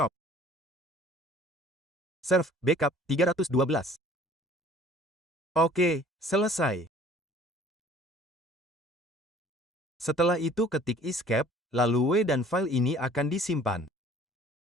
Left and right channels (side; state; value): both; normal; correlation 0.52